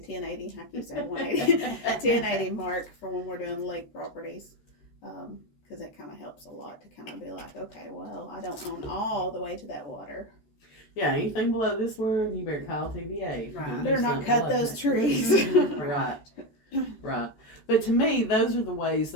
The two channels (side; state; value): right; late; 14 ms